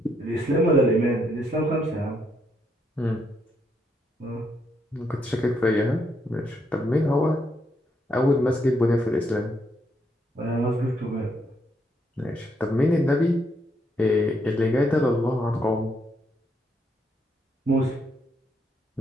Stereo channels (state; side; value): normal; both; correlation 0.75